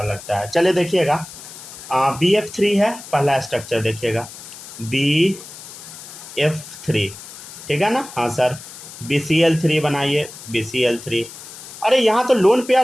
लगता है। चलिए देखिएगा, BF3 है पहला स्ट्रक्चर, देखिएगा BF3, ठीक है ना? हाँ सर, BCl3 बनाइए, BCl3। अरे यहाँ तो लोन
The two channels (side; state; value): left; noise; hiss, 15 dB below the sound